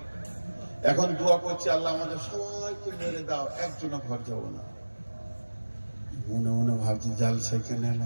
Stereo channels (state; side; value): inverted; both; correlation -1.00